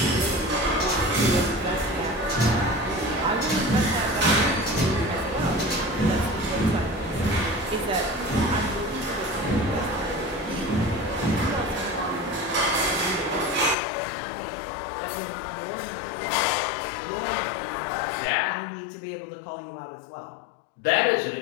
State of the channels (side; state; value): right; drops out; at 13.8 s